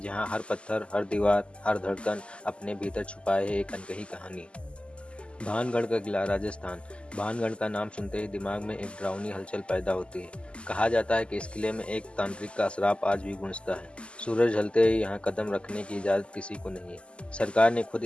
हर पत्थर, हर दीवार, हर धड़कन अपने भीतर छुपाए है एक अनकही कहानी। भानगढ़ का किला, राजस्थान। भानगढ़ का नाम सुनते ही दिमाग में एक डरावनी हलचल पैदा होती है। कहा जाता है कि इस किले में एक तांत्रिक का श्राप आज भी गूंजता है। सूरज ढलते ही यहाँ कदम रखने की इजाज़त किसी को नहीं है। सरकार ने खुद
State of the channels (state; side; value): late; right; 0.053 ms